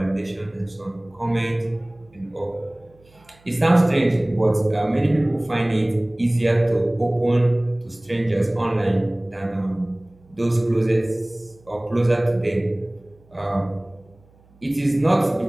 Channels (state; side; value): noise; right; hum, 30 dB below the sound